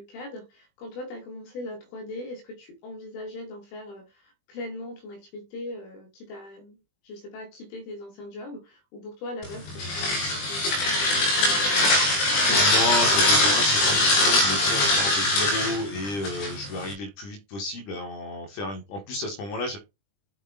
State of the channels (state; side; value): late; right; 20 ms